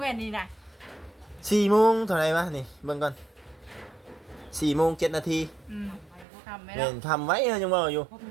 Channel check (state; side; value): drops out; left; at 6.2 s